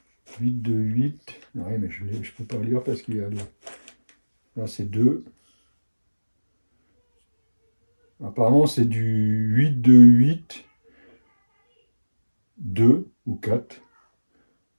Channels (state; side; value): inverted; both; correlation -1.00